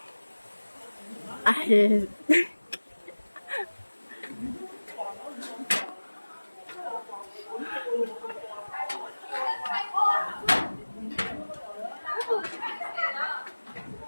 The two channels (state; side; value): inverted; both; correlation -1.00